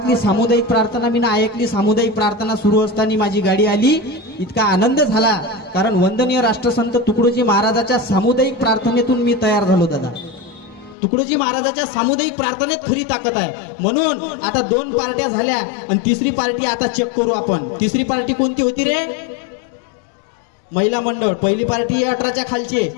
सामुदायिक प्रार्थना मी ऐकली. सामुदायिक प्रार्थना सुरू असताना माझी गाडी आली. इतका आनंद झाला कारण वंदनीय राष्ट्रसंत तुकडोजी महाराजाच्या सामुदायिक प्रार्थनेतून मी तयार झालो. दादा, तुकडोजी महाराजाच्या सामुदायिक प्रार्थनेत खरी ताकद आहे. म्हणून आता 2 पार्ट्या झाल्या आणि तिसरी पार्टी आता चेक करू आपण. तिसरी पार्टी कोणती होती रे? महिला मंडळ. पहिली पार्टी 18च्या खालची,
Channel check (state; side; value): drops out; right; at 11.0 s